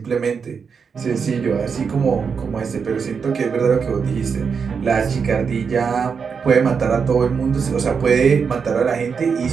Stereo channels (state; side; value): quieter; left; 6.0 dB